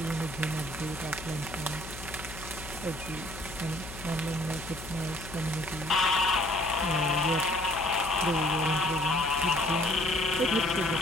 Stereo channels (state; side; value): noise; left; hum, 13 dB below the sound